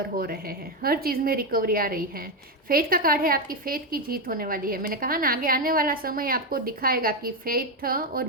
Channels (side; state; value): both; normal; correlation 0.08